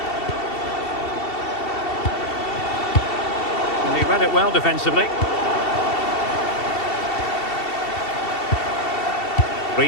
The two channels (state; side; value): late; right; 2.7 ms